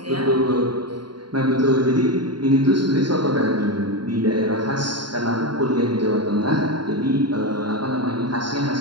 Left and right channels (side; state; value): left; late; 0.72 ms